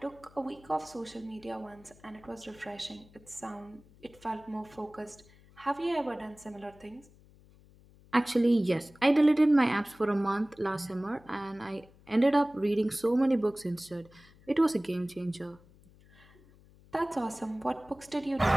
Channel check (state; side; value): noise; left; hum, 26 dB below the sound